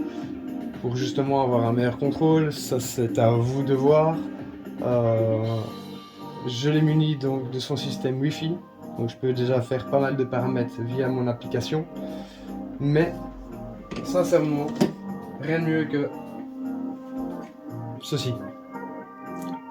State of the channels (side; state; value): both; identical; correlation 1.00